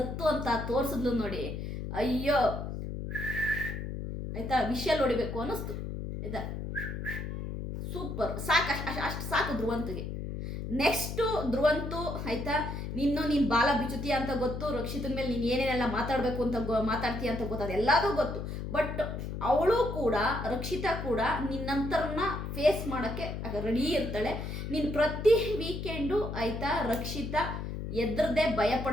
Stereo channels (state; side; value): noise; left; hum, 5 dB below the sound